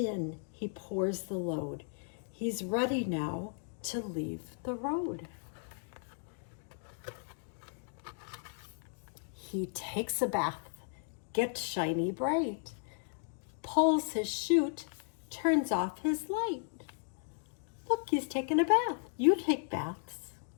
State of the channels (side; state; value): right; silent; 54 dB below the other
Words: he pours the load. He's ready now to leave the road. He takes a bath, gets shiny bright, pulls his chute, turns off his light. Look, he's taking a bath. You take baths.